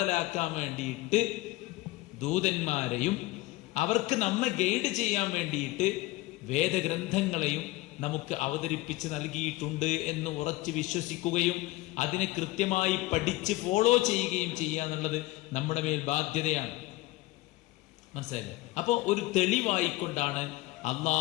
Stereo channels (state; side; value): quieter; right; 19.7 dB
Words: വേണ്ടിയിട്ട് ദൂതന്മാരെയും അവർക്ക് നമ്മെ ഗൈഡ് ചെയ്യാൻ വേണ്ടിയിട്ട് വേദഗ്രന്ഥങ്ങളെയും നമുക്ക് അവതരിപ്പിച്ച് നൽകിയിട്ടുണ്ട് എന്ന് ഉറച്ചു വിശ്വസിക്കുകയും അതിനെ കൃത്യമായി പഠിച്ച് ഫോളോ ചെയ്യുകയും ചെയ്യുക എന്നുള്ളത് നമ്മുടെ മേൽ ബാധ്യതയാണ്. മനസ്സിലായില്ലേ? അപ്പോ ഒരു തെളിവായിക്കൊണ്ടാണ്